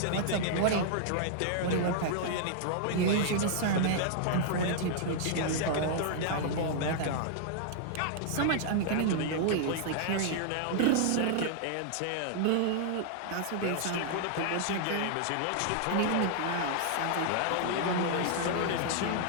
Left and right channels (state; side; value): different; both; correlation -0.01